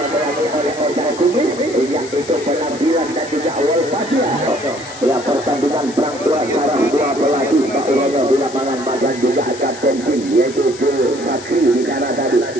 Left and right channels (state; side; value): noise; left; hiss, 15 dB below the sound